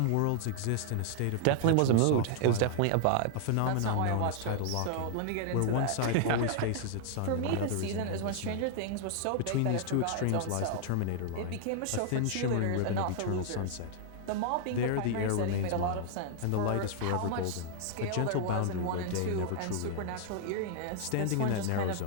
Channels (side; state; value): both; different; correlation -0.01